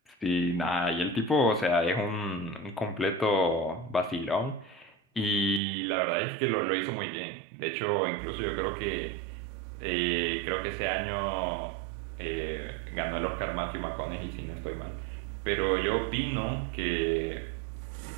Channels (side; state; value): left; drops out; at 5.6 s